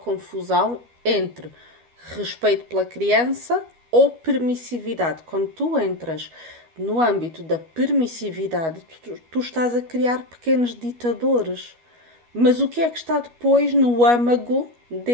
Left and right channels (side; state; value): left; late; 12 ms